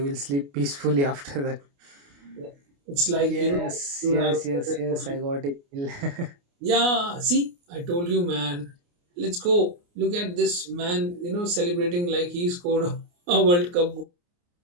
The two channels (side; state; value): left; late; 29 ms